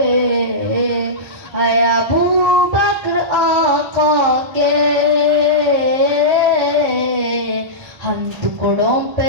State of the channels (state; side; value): late; left; 1.2 ms